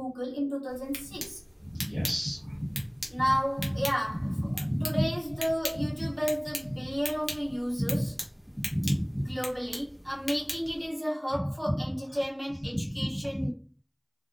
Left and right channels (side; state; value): both; identical; correlation 1.00